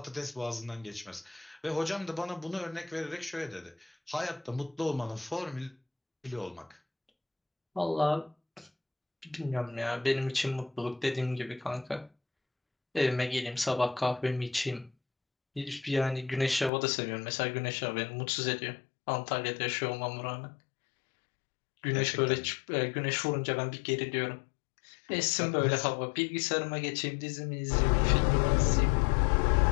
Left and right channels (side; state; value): right; drops out; at 16.7 s